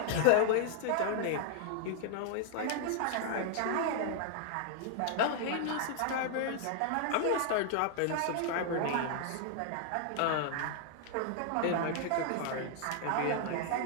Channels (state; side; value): different; both; correlation 0.00